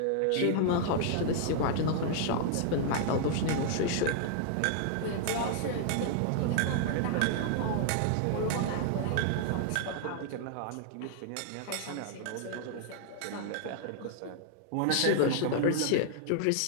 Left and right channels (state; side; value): different; both; correlation -0.01